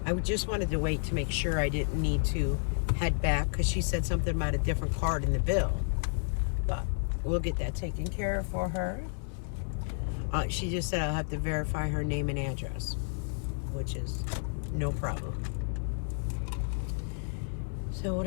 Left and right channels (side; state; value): right; silent; 57 dB below the other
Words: I just wanted to wait to make sure I didn't need to head back because she said something about a different card in the bill. But we'll get that taken care of for her. She just said I'll have to verify her name and address, which is no problem. So what